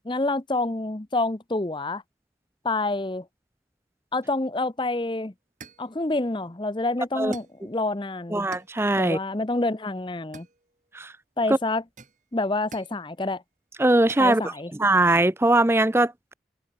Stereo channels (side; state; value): both; normal; correlation 0.63